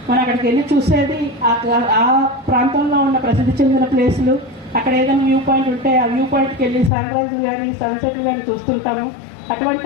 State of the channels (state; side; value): drops out; right; at 6.9 s